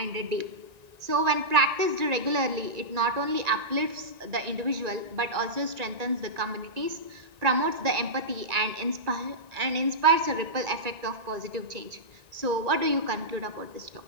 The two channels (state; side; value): late; left; 1.9 ms